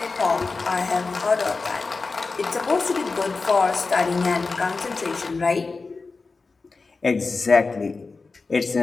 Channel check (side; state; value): right; quieter; 4.1 dB